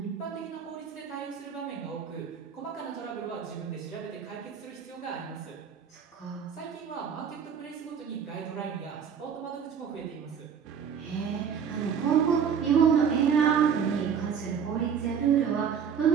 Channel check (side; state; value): left; quieter; 7.3 dB